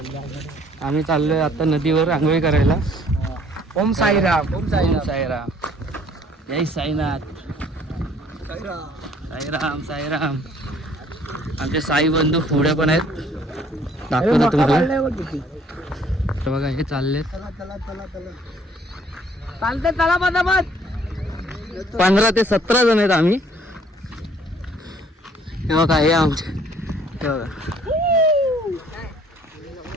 आम्ही चाललोय आता नदीवर आंघोळी करायला. ओम साईराम. ओम साईराम. जय साईनाथ. साईराम साईराम. आमचे साई बंधू पुढे पण आहेत. दाखवतो तुम्हाला. बघा हे चालले 15 ते 17 जण आहेत आम्ही. हे बघा हे आमचे हे बघा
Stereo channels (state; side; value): normal; both; correlation 0.59